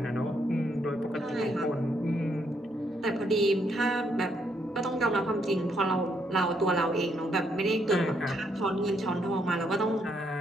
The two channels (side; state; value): both; normal; correlation 0.74